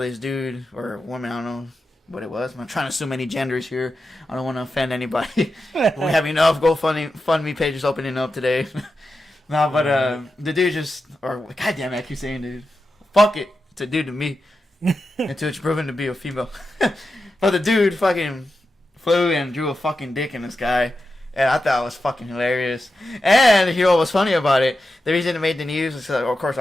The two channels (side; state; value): both; normal; correlation 0.90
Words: this dude, or woman, I don't know what it was. I'm trying to assume any genders here. I don't want to offend anybody. We have enough GoFundMe pages opening up today. No, but the dude goddamn it, I keep saying dude. Fuck it. It's a dude to me. Until it's proven to be a female. But the dude fucking flew and drew a fucking dick in the sky. And I thought it was fucking hilarious. And you know what was funny about it? The reason it made the news is, of course, a